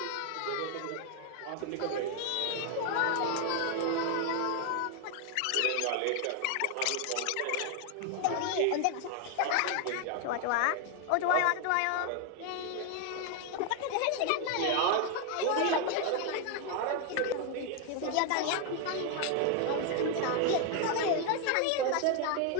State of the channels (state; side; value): different; both; correlation 0.00